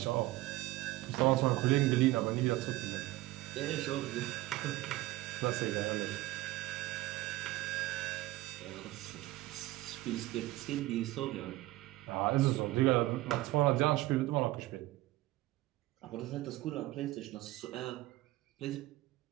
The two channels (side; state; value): left; quieter; 17.7 dB